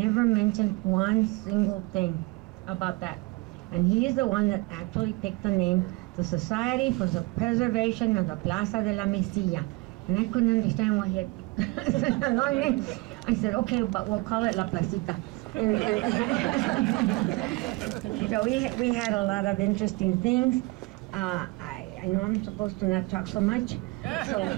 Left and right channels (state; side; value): quieter; left; 23.7 dB